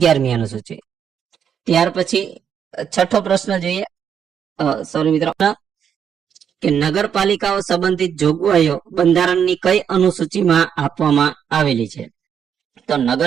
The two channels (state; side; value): quieter; left; 8.1 dB